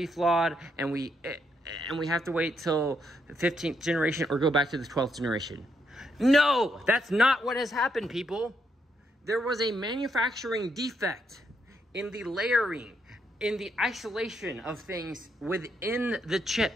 flawed, and we have to wait till the 15th generation or go back to the 12th generation. No, that's not what has happened, people. There was a manufacturing defect in the layering, in the isolation of things within the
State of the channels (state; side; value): normal; both; correlation 0.77